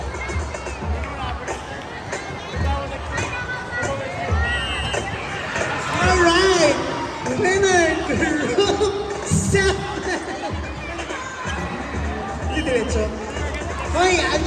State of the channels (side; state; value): both; identical; correlation 1.00